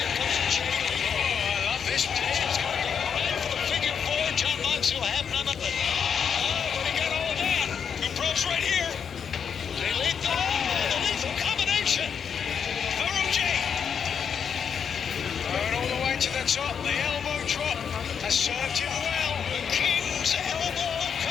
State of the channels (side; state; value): right; quieter; 7.1 dB